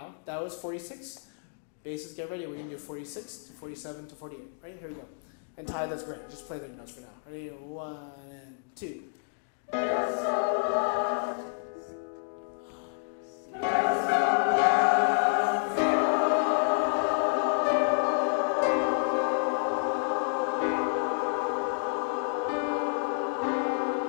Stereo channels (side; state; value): right; silent; digital silence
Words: that was 46. Basses, get ready. We're gonna do 46 to 47 to 48. Right here we go. And Ty, that's great. Just play the notes for now. Ready? 1 and 2. Desolate.